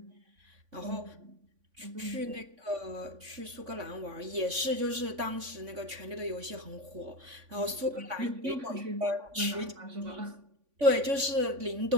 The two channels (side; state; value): left; late; 3.5 ms